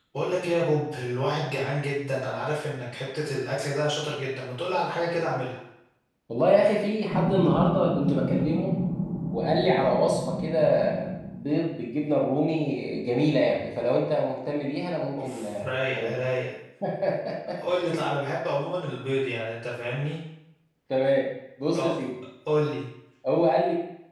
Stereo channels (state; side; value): identical; both; correlation 1.00